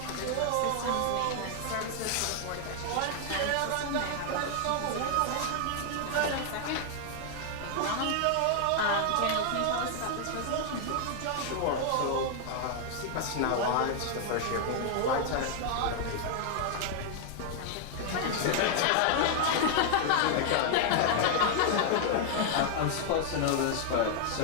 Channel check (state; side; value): different; both; correlation 0.00